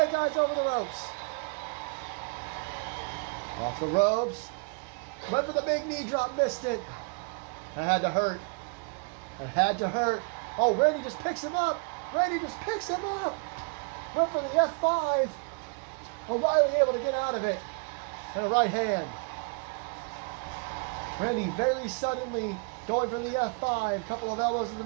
eyes over the ropes. Off the ropes. Went for the big knee drop, missed it. That had to hurt. That had to hurt. Oh, Randy just picks him up. Randy just picks him up. Went for the F5. O'Reilly able to get out of it. And a right hand. Randy very suddenly going for the F5. Couple of elbows in the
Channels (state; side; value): quieter; left; 34.3 dB